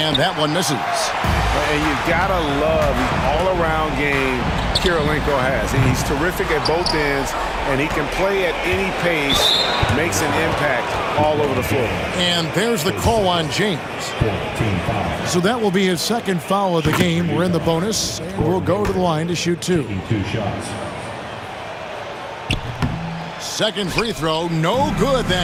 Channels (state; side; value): identical; both; correlation 1.00